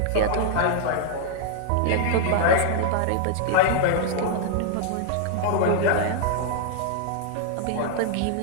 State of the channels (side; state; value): both; different; correlation -0.01